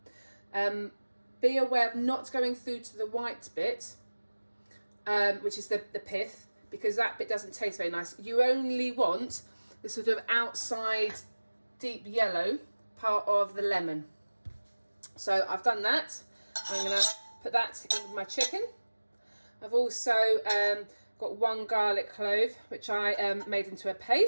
Be aware of not going through to the white bit, which is the pith, because that bit doesn't taste very nice. You only want the sort of outside deep yellow part of the lemon. So I've done that. I'm going to put that in with my chicken. I've also got 1 garlic clove, which I made into a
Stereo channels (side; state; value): both; inverted; correlation -1.00